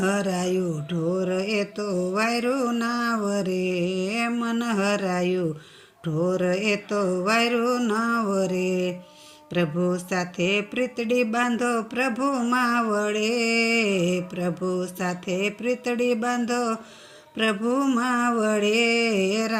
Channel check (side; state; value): both; identical; correlation 1.00